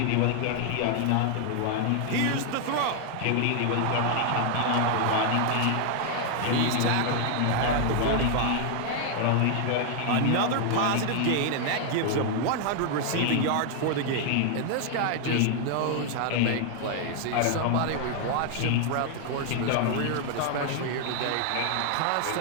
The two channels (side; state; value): both; different; correlation 0.00